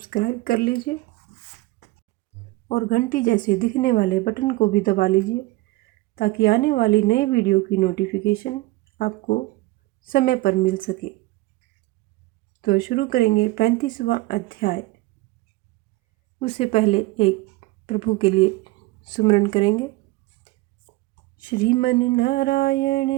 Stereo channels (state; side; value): quieter; left; 20.3 dB